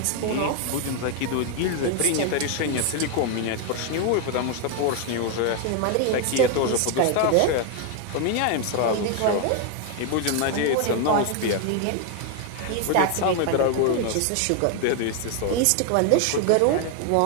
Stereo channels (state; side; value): different; both; correlation 0.01